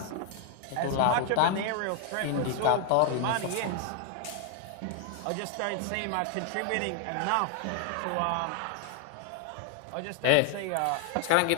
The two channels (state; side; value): different; both; correlation 0.00